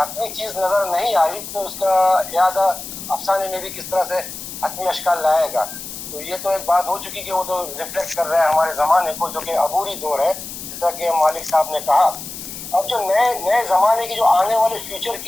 चीज़ नज़र नहीं आई तो उसका यादा अफसाने में भी किस तरह से हतमी अशकाल लाएगा। तो ये तो एक बात हो चुकी कि वो तो रिफ्लेक्ट कर रहा है हमारे ज़माने को, जो कि अबूरी दौर है, जिस तरह के मालिक साहब ने कहा। अब जो नए ज़माने की जो आने वाले फ्यूचर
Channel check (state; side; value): noise; left; hiss, 10 dB below the sound